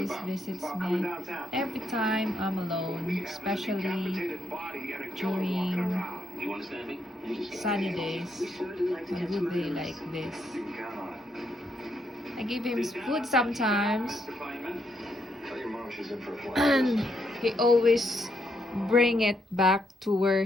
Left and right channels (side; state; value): both; normal; correlation 0.78